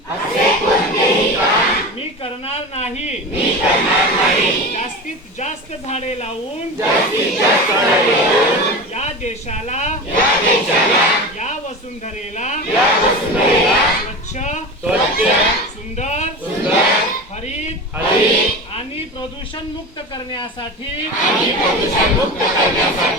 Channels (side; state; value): both; normal; correlation 0.28